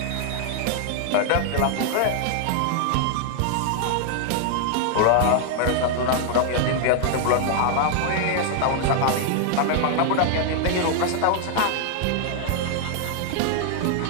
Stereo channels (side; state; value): both; different; correlation 0.00